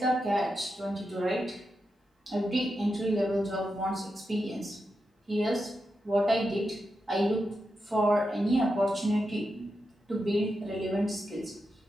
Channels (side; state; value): both; normal; correlation 0.88